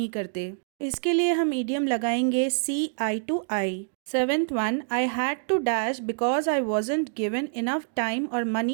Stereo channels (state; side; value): silent; left; digital silence